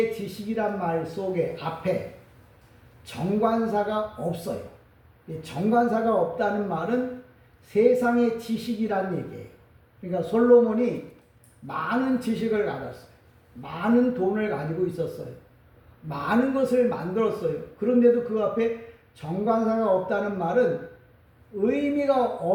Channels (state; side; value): identical; both; correlation 1.00